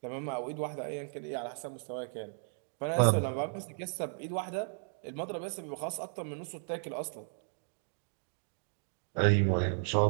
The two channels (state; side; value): silent; left; digital silence